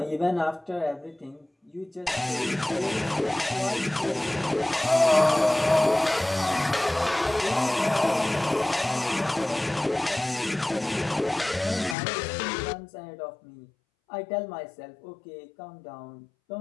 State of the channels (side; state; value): right; drops out; at 12.0 s